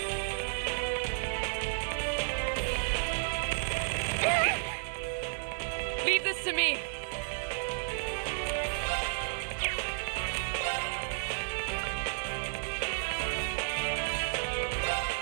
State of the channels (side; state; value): left; silent; digital silence